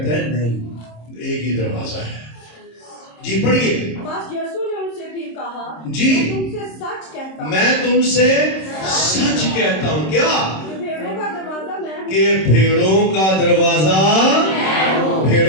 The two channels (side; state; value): right; late; 26 ms